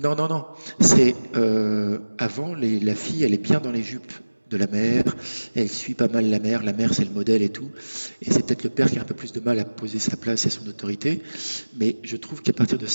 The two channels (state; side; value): inverted; both; correlation -1.00